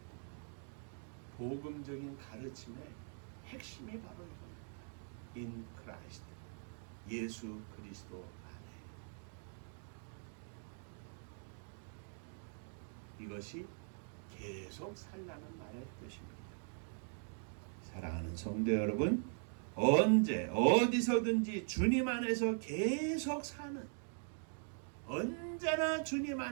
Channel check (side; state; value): left; silent; 50 dB below the other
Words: 복음적인 가르침의 핵심이 바로 이겁니다. In Christ, 예수 그리스도 안에. 이것이 계속 살라는 말의 뜻입니다. 사랑하는 성도 여러분, 언제 어디서든지 주님 안에서 계속 사는, 언제나 주님